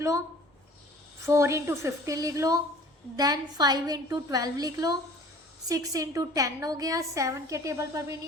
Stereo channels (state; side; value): normal; both; correlation 0.48